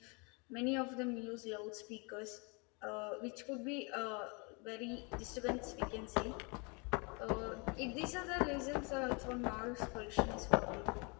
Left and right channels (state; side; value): quieter; right; 31.3 dB